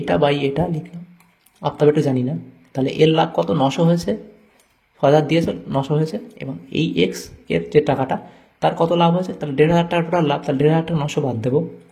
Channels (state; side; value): identical; both; correlation 1.00